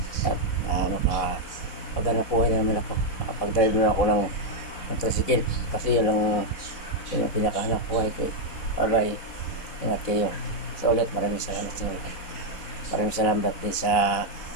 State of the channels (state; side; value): late; right; 4.0 ms